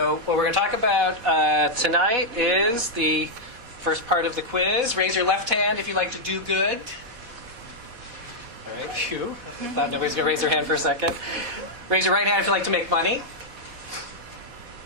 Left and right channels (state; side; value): late; left; 4.1 ms